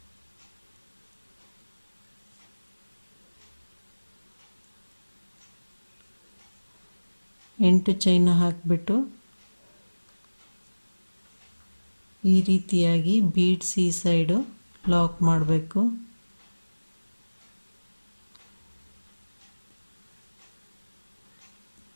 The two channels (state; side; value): inverted; both; correlation -1.00